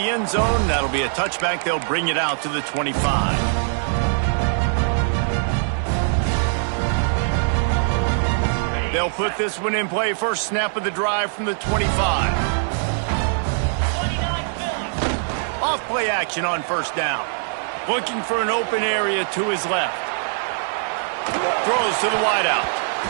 end zone. That'll be a touchback. They'll bring it out to the 25. They'll put this one in play. First snap of the drive from the 25. Off play action on first down. Looking for an open area to his left. Throws to the wideout.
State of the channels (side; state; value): left; silent; 64 dB below the other